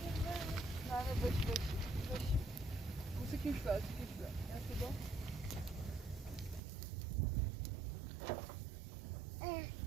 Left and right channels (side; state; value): left; drops out; at 6.6 s